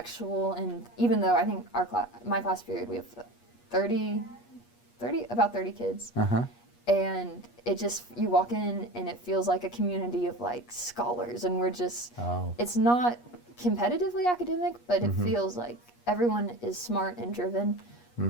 And even though I think my class period, we have about 30 kids. And it just, you walk in and it feels like a community of scholars, and we're just, it's not competitively academic, but it feels like everyone is smart and driven,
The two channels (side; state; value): right; late; 8.4 ms